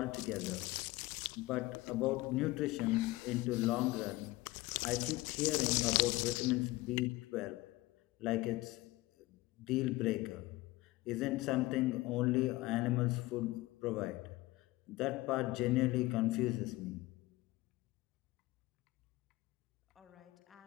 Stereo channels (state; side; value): quieter; right; 19.8 dB